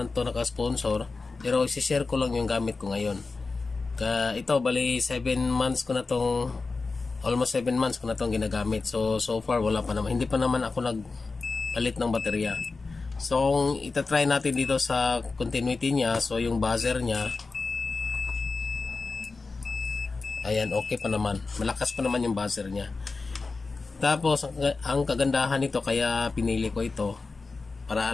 to naka-sponsor, pero i-share ko lang yung gamit ko ngayon. Ito bali 7 months ko na tong, almost 7 months ko na tong ginagamit. So far wala pa naman, hindi pa naman ako nagpalit ng baterya. So kung itatry natin dito sa continuity niya, so yung buzzer niya, ayan, okay pa naman, malakas pa naman yung buzzer niya. Tapos ang kagandahan nito, kaya pinili ko ito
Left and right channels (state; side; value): quieter; right; 4.0 dB